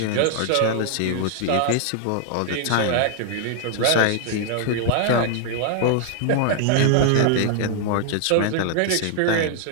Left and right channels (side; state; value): both; different; correlation 0.00